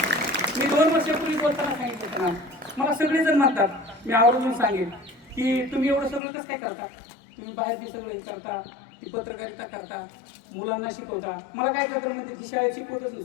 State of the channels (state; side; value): drops out; right; at 6.2 s